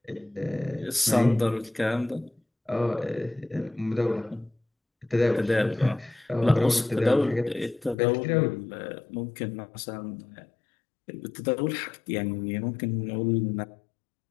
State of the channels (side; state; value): right; drops out; at 8.0 s